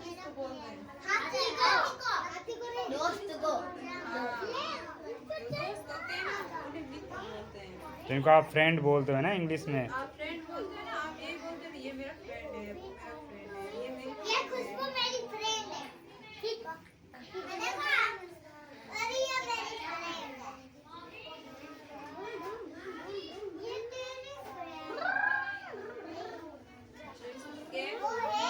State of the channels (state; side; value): identical; both; correlation 1.00